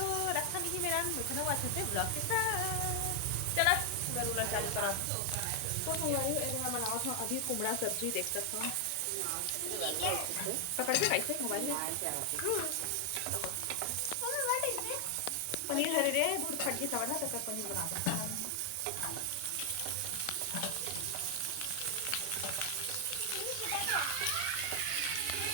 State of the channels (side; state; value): both; different; correlation 0.00